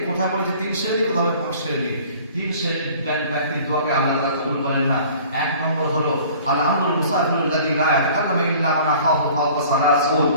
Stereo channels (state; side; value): inverted; both; correlation -0.49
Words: কোথায় বলেছে 3 শ্রেণী, কোথাও 5 শ্রেণী, 3 শ্রেণীর ব্যক্তির দোয়াকে আল্লাহ তাআলা কবুল করেন না। 1 নম্বর হলো আল-আমরুল মুসাফিরুল্লাযী লা ইয়াতাকাল্লামু ইল্লা মান আখাহু ফাওকা সালাসুন,